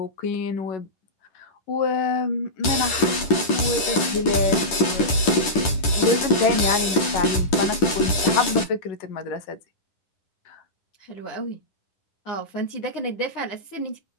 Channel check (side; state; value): right; late; 10 ms